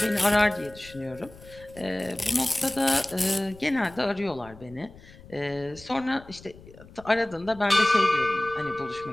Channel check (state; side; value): noise; left; rumble, 21 dB below the sound